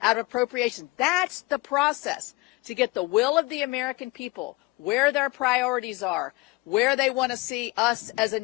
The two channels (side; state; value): right; quieter; 23.1 dB